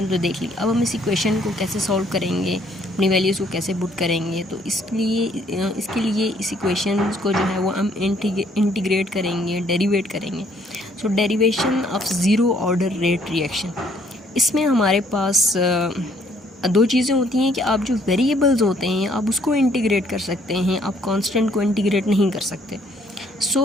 तो देख ली, अब हम इस इक्वेशन को कैसे सॉल्व करेंगे, अपनी वैल्यूज़ को कैसे पुट करेंगे। तो इसके लिए इस इक्वेशन को जो है वो हम इंटीग्रेट करेंगे, डेरिवेट करेंगे। So derivation of zero order rate reaction, इसमें हमारे पास दो चीज़ें होती हैं कि आप जो वेरिएबल्स होते हैं आप उसको इंटीग्रेट कर सकते हैं, आप कांस्टेंट को इंटीग्रेट नहीं कर सकते। सो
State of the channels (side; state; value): both; normal; correlation 0.65